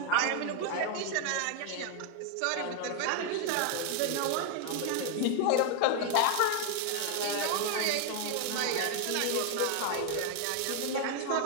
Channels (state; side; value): different; both; correlation 0.00